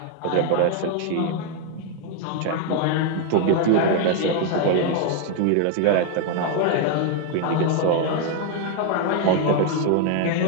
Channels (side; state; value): both; different; correlation 0.00